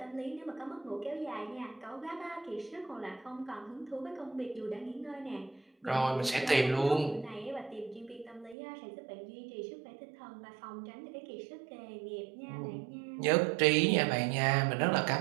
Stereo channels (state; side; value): drops out; left; at 8.6 s